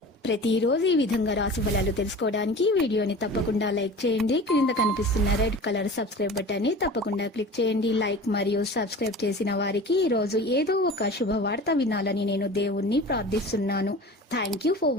ప్రతిరోజు ఈ విధంగా రాశి ఫలాలు తెలుసుకోవడానికి వీడియోని తప్పకుండా లైక్ చేయండి. క్రింద కనిపిస్తున్న రెడ్ కలర్ సబ్స్క్రైబ్ బటన్ ని తప్పకుండా క్లిక్ చేయండి. లైక్ మరియు సబ్స్క్రైబ్ చేసిన వారికి ఈ రోజు ఏదో ఒక శుభవార్త వినాలని నేను దేవుణ్ణి ప్రార్థిస్తున్నాను. Thank you for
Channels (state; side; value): normal; both; correlation 0.37